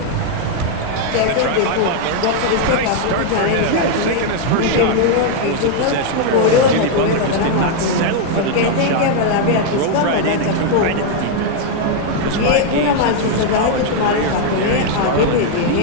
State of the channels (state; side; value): different; both; correlation 0.00